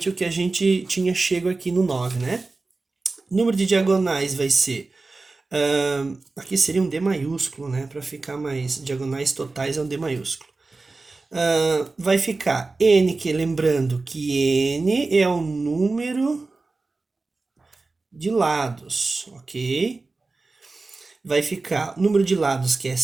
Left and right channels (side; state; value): left; quieter; 3.6 dB